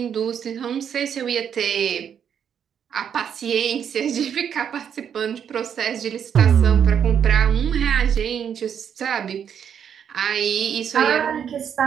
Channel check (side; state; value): left; quieter; 8.2 dB